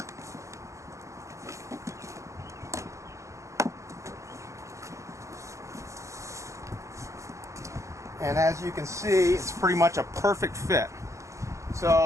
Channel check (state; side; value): late; left; 0.15 ms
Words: And as you can see, it's pretty much a perfect fit.